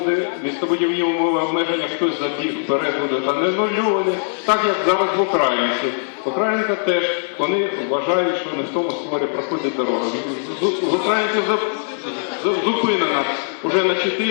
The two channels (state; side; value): silent; right; 66 dB below the other